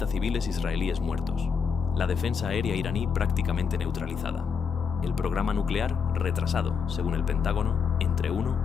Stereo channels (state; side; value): quieter; right; 6.2 dB